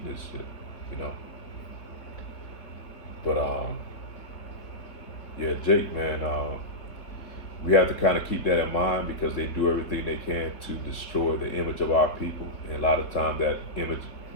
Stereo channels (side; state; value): right; late; 3.8 ms